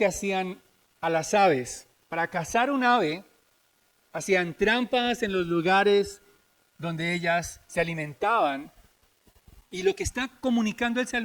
hacían a las aves. Para cazar un ave, hacían trampas en los lugares donde ellas se alimentaban. Y lo que está comunicando el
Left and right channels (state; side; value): identical; both; correlation 1.00